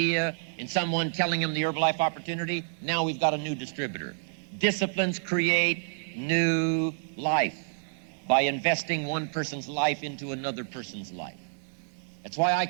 in someone, telling them the Herbalife opportunity, now we've got a new distributor. Disciplines create new life by investing one person's life into another person's life. That's why I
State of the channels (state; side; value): silent; left; digital silence